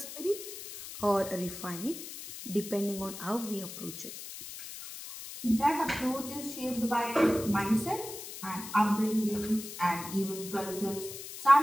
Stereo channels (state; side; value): noise; left; hiss, 11 dB below the sound